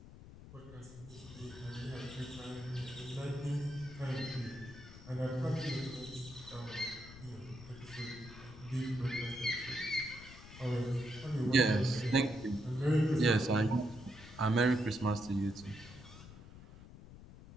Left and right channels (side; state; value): left; noise; rumble, 16 dB below the sound